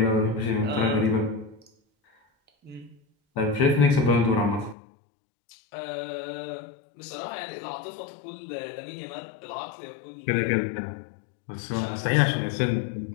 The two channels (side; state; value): right; drops out; at 4.8 s